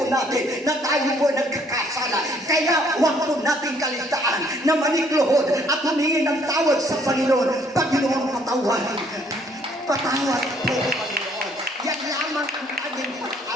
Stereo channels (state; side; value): normal; both; correlation 0.64